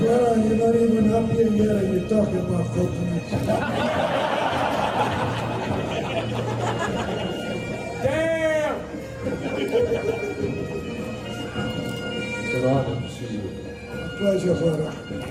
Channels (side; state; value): both; identical; correlation 1.00